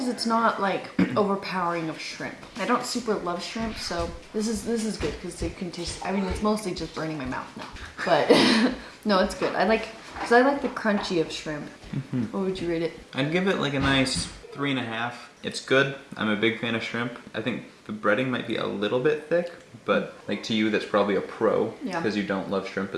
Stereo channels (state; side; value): identical; both; correlation 1.00